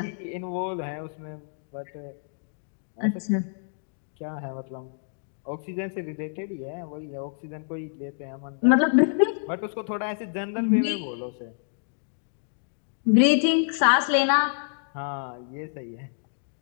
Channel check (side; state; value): right; silent; digital silence